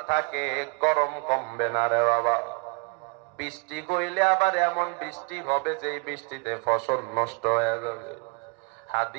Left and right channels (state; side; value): quieter; left; 31.7 dB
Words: থাকে গরম কমবে না রে বাবা। বৃষ্টি কইলে আবার এমন বৃষ্টি হবে যে বৃষ্টিতে ফসল নষ্ট হয়ে যাবে।